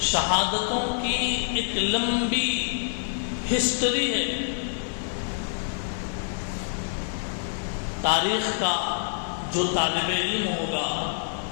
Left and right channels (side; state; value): right; silent; digital silence